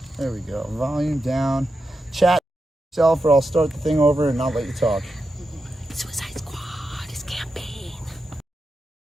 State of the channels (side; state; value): both; normal; correlation 0.88